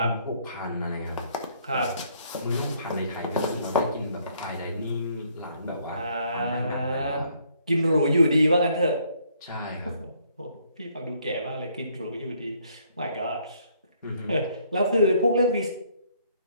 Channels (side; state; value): both; inverted; correlation -0.66